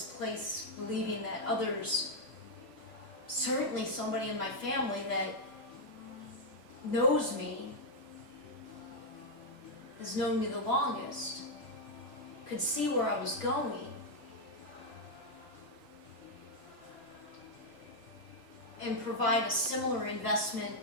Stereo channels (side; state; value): right; late; 2.0 ms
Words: place, believing that others, certainly somebody in my family that knows me, has known me the longest, could see where I was going, and provide a similar investment